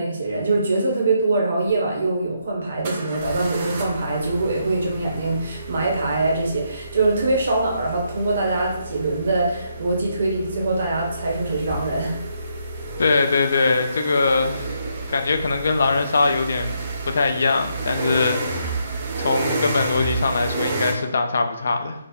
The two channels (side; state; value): both; inverted; correlation -0.76